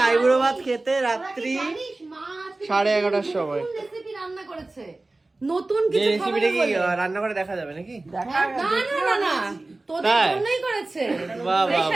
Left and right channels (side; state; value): left; quieter; 3.1 dB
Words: আইবুড়ো ভাত খেতে রাত্রি 11:30টার সময়। রান্না করেছে নতুন কিছু রেসিপিটা কি রান্না করে দেখা যাবে নাকি? না তোদের জন্যই করেছে। বাহ বাহ